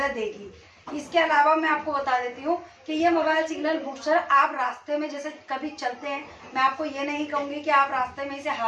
देगी। इसके अलावा मैं आपको बता देती हूँ कि ये मोबाइल सिग्नल बूस्टर आप रास्ते में जैसे कभी चलते हैं, मैं आपको ये नहीं कहूंगी कि आप रास्ते में इसे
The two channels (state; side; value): identical; both; correlation 1.00